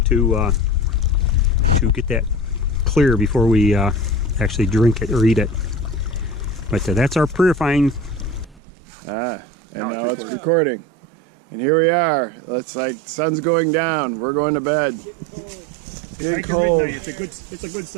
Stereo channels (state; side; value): drops out; left; at 8.6 s